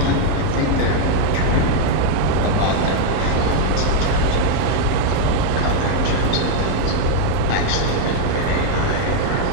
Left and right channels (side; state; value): both; different; correlation 0.00